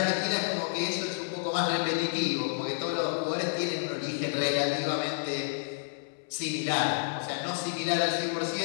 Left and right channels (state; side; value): silent; right; 58 dB below the other